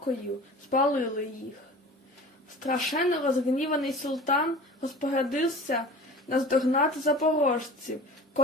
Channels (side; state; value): both; normal; correlation 0.39